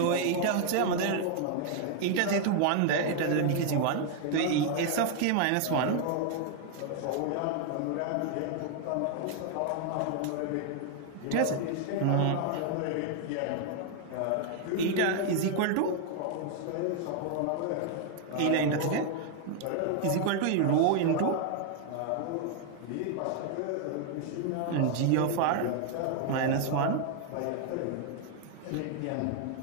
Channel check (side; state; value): both; different; correlation 0.00